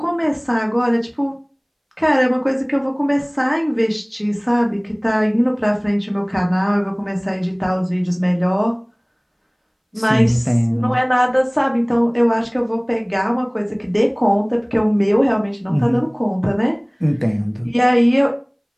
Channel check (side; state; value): both; identical; correlation 1.00